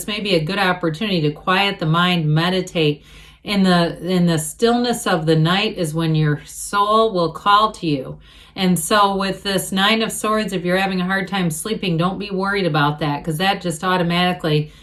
may be a good opportunity to quiet the mind, meditate. In the stillness of the night is when your soul will call to you. And so with this Nine of Swords, if you're having a hard time sleeping, don't be worried about that, because that just automatically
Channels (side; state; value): both; identical; correlation 1.00